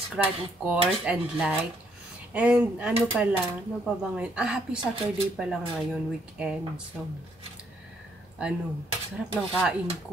of course, and like. And ano pala, ano pa ba ngayon? Happy Saturday pala ngayon, weekend. So, ano, sarap ng kain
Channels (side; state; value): both; normal; correlation 0.70